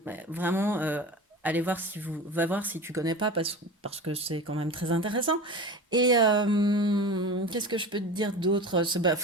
vraiment, allez voir va voir si tu connais pas, parce que c'est quand même très intéressant. Et qu'est-ce que je peux te dire d'autre? Bah,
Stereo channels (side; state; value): both; normal; correlation 0.31